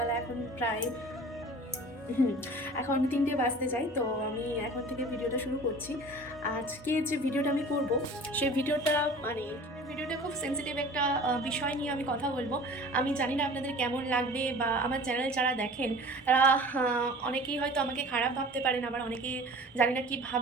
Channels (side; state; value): both; normal; correlation 0.43